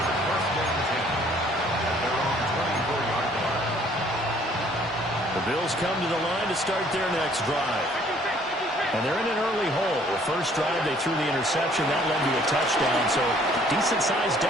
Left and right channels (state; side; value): normal; both; correlation 0.59